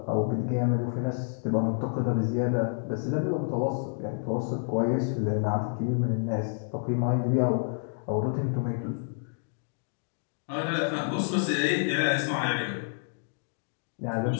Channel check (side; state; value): right; silent; digital silence